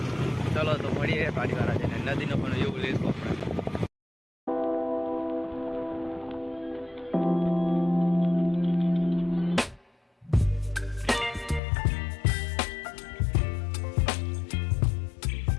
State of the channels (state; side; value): drops out; right; at 11.6 s